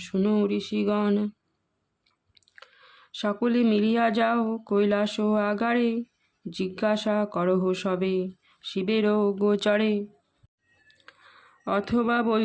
শুনো ঋষিগণ। সকলে মিলিয়া যাও কৈলাস আগারে, জিজ্ঞাসা করহ সবে শিবের গোচরে। অথবা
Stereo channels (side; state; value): both; identical; correlation 1.00